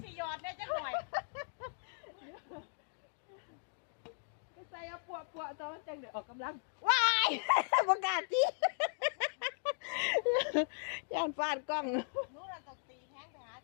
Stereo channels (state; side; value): silent; right; digital silence